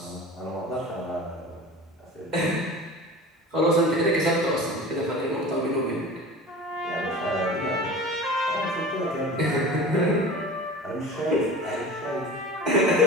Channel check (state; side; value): normal; both; correlation 0.37